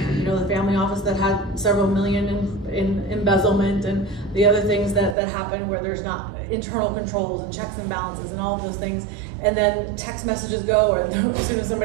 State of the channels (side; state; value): left; drops out; at 5.2 s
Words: the family office that had several million in embezzlement and the other things that happen where there's not internal controls and checks and balances and all of those things. And then text messages go, or as soon as